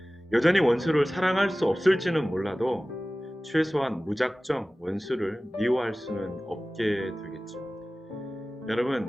여전히 원수를 사랑할 수 없을지는 몰라도 최소한 무작정 원수를 미워할 수는 없게 되겠죠. 여러분,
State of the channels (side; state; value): both; normal; correlation 0.97